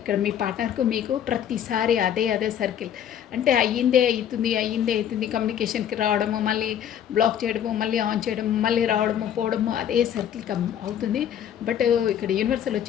మీ పార్ట్నర్కు మీకు ప్రతిసారి అదే సర్కిల్. అంటే అయ్యిందే అవుతుంది కమ్యూనికేషన్కి రావడము, మళ్ళీ బ్లాక్ చేయడము, మళ్ళీ ఆన్ చేయడము, మళ్ళీ రావడము పోవడము, అదే సర్కిల్ అవుతుంది. బట్ ఇక్కడ యూనివర్సల్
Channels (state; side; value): quieter; right; 9.7 dB